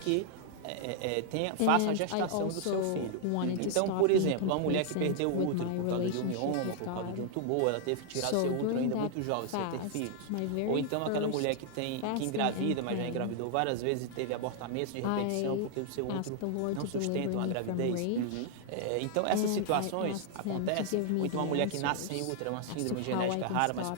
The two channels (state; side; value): different; both; correlation 0.00